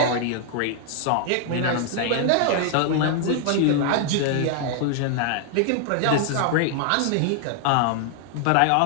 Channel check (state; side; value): different; both; correlation 0.00